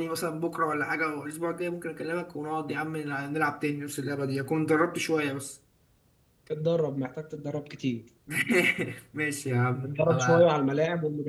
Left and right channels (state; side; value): identical; both; correlation 1.00